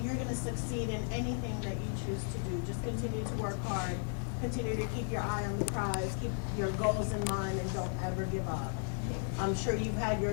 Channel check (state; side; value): silent; right; 54 dB below the other